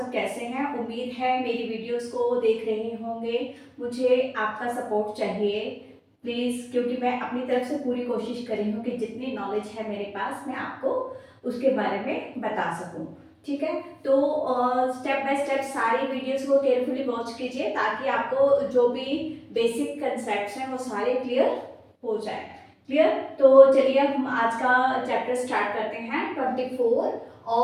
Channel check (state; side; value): identical; both; correlation 1.00